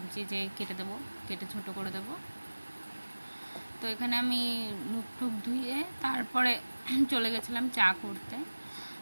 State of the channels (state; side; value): inverted; both; correlation -1.00